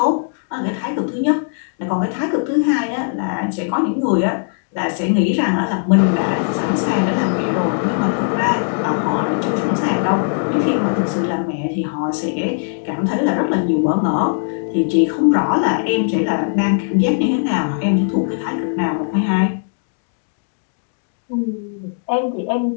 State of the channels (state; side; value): silent; right; digital silence